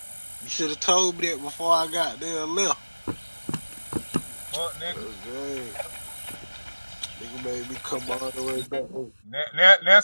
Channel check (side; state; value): both; inverted; correlation -1.00